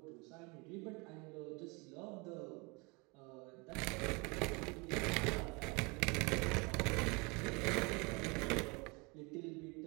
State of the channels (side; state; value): left; quieter; 28.5 dB